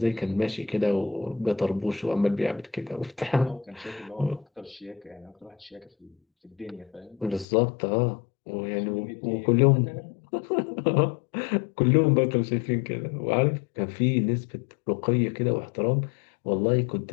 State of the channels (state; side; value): drops out; right; at 7.5 s